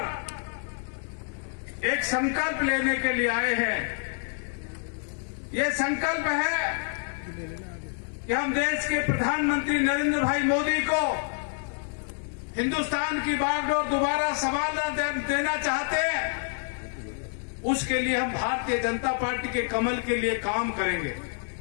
एक संकल्प लेने के लिए आए हैं। ये संकल्प है कि हम देश के प्रधानमंत्री नरेंद्र भाई मोदी को हिंदुस्तान की बागडोर दोबारा संभालना देना चाहते हैं। उसके लिए हम भारतीय जनता पार्टी के कमल के लिए काम करेंगे।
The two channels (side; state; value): right; silent; 60 dB below the other